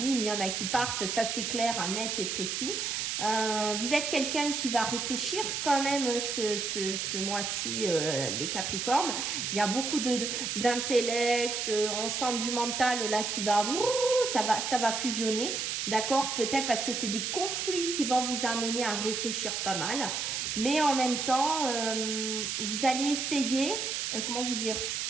il y en a qui partent. Ça, c'est clair, net et précis. Vous êtes quelqu'un qui va réfléchir quand même ce mois-ci, les Capricornes. Il y a beaucoup d'intellect, on sent du mental là qui va, ça va fusionner. D'accord? Peut-être parce que c'est des conflits qui vont vous amener à réfléchir pas mal. Mais en même temps, vous allez essayer, comment vous dire,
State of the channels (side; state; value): right; noise; hiss, 2 dB below the sound